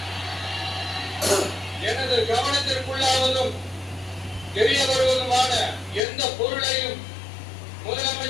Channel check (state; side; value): drops out; right; at 6.0 s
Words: எனது கவனத்திற்குள்ளாவதும் தெரிய வருவதுமான எந்த பொருளையும்